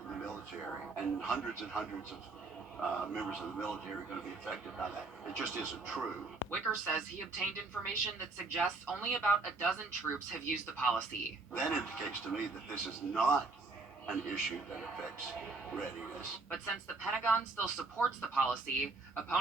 the military, and hundreds of members of the military are going to be affected by that. It just isn't true. Wicker says he obtained information that suggests only about a dozen troops have used the policy. That indicates to me that this is not an issue that affects readiness. But since the Pentagon still supports the policy,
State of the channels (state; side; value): quieter; left; 3.7 dB